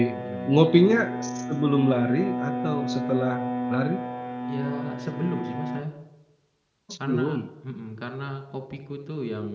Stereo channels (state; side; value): identical; both; correlation 1.00